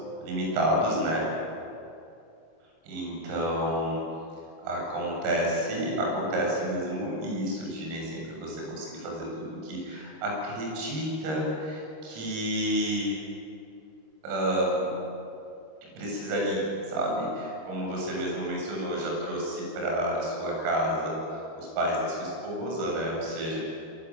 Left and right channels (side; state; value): left; late; 26 ms